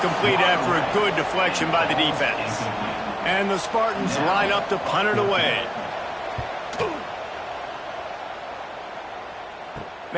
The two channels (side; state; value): both; identical; correlation 1.00